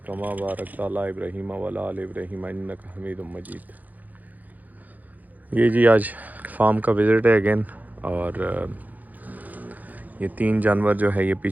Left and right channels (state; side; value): late; left; 0.081 ms